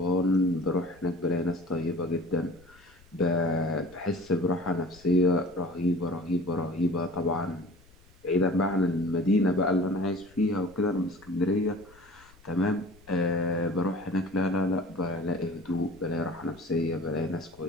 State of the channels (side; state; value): left; noise; rumble, 27 dB below the sound